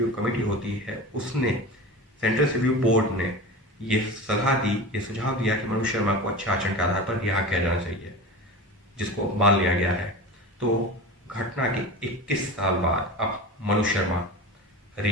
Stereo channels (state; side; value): normal; both; correlation 0.31